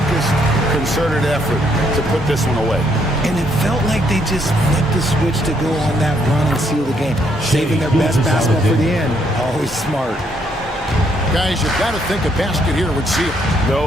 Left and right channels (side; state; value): both; normal; correlation 0.72